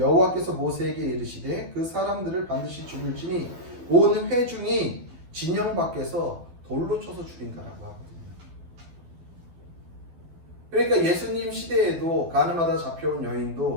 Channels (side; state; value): left; late; 12 ms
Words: 모세에게 이르시되 그 사람들을 반드시 죽일지니 온 회중이 진영 밖에서 돌로 쳐서 죽인다라고 하거든요. 그러니까 예수님 시대에도 가늠하다 잡혀온